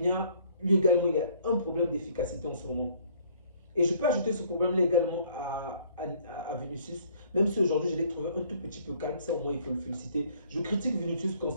lui également, il a un problème d'efficacité en ce moment. Et je peux ajouter ce problème-là également à Vinicius, même si aujourd'hui je l'ai trouvé un tout petit peu calme, ça au moins il faut le féliciter. Je critique Vinicius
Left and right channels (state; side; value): inverted; both; correlation -0.59